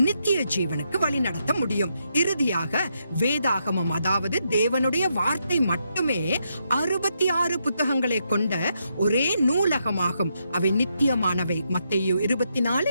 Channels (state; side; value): inverted; both; correlation -0.80